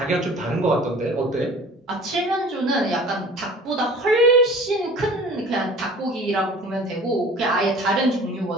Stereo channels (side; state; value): both; normal; correlation 0.44